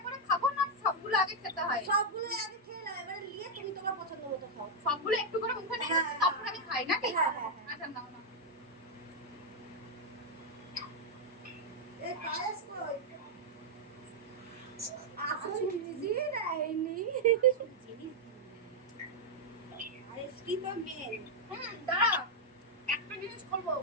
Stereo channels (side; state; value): both; normal; correlation -0.01